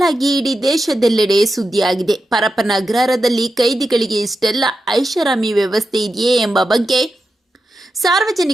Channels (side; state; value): both; normal; correlation 0.89